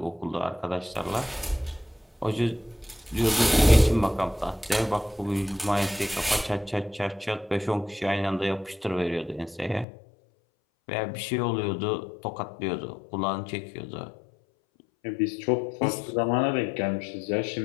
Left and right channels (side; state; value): right; drops out; at 9.9 s